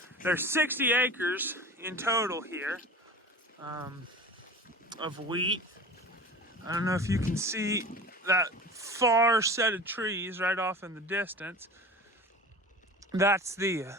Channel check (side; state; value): both; normal; correlation 0.35